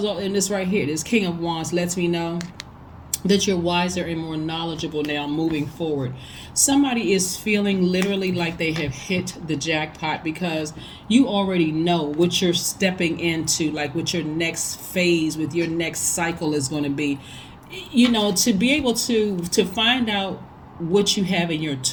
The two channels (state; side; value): identical; both; correlation 1.00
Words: right here, this King of Wands lets me know that you're wiser and more knowledgeable now moving forward. Somebody is feeling literally like they have hit the jackpot because you already know what you're stepping into, like what your next phase with your next cycle is going to be. To be able to find out what you have in your